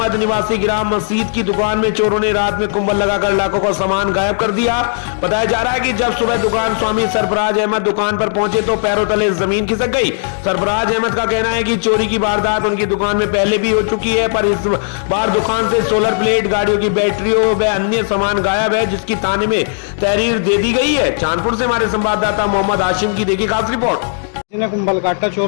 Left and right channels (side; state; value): right; silent; digital silence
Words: निवासी ग्राम मस्जिद की दुकान में चोरों ने रात में कुंबल लगाकर लाखों का सामान गायब कर दिया। बताया जा रहा है कि जब सुबह दुकान स्वामी सरफराज अहमद दुकान पर पहुंचे तो पैरों तले जमीन खिसक गई। सरफराज अहमद का कहना है कि चोरी की वारदात उनकी दुकान में पहले भी हो चुकी है, पर इस बार दुकान से सोलर प्लेट, गाड़ियों की बैटरियों व अन्य सामान गायब है, जिसकी थाने में तहरीर दे दी गई है। चांदपुर से हमारे संवाददाता मोहम्मद हाशिम की देखिए खास रिपोर्ट। जिन्हें कुंबल काटा